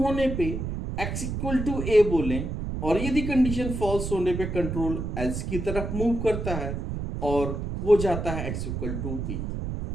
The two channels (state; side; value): noise; right; rumble, 4 dB below the sound